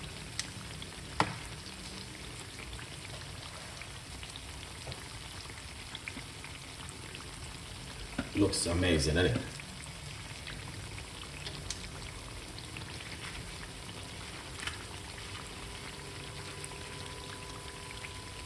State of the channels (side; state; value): both; identical; correlation 1.00